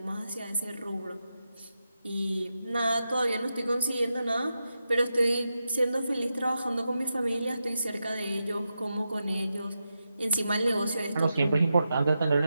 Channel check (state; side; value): inverted; both; correlation -0.89